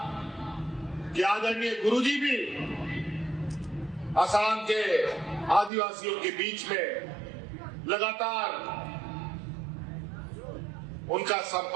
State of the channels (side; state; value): left; drops out; at 5.7 s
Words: कि आदरणीय गुरुजी भी असम के आदिवासियों के बीच में लगातार उनका